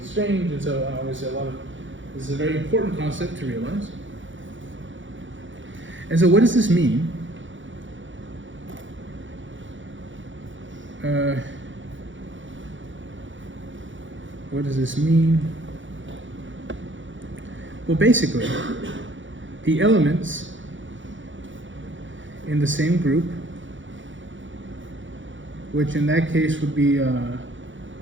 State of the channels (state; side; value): late; left; 0.56 ms